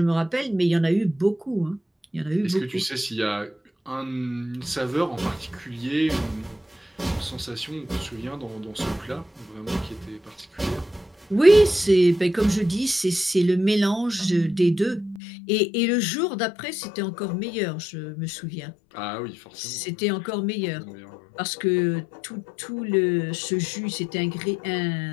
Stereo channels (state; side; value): drops out; right; at 15.2 s